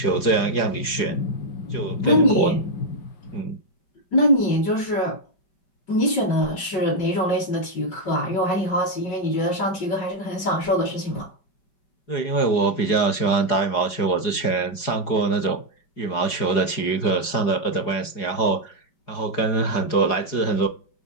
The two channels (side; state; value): right; late; 4.8 ms